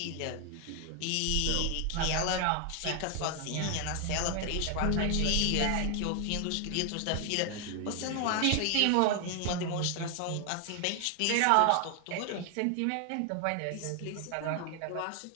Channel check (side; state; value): both; different; correlation 0.01